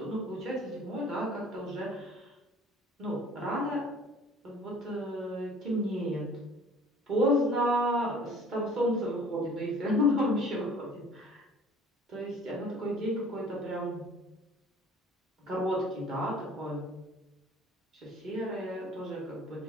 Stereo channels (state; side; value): normal; both; correlation 0.51